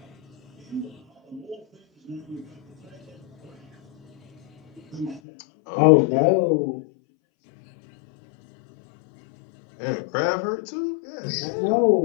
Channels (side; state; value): right; drops out; at 5.2 s